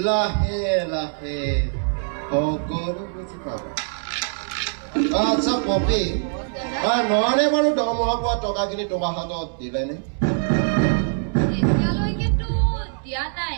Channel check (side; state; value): left; silent; 63 dB below the other